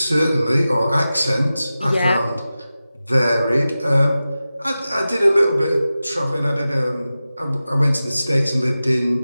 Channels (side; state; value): both; inverted; correlation -0.94